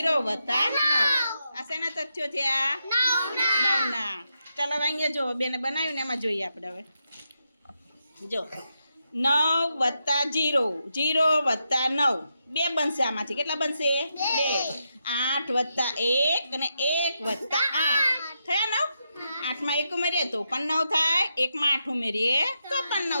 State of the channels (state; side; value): inverted; both; correlation -0.84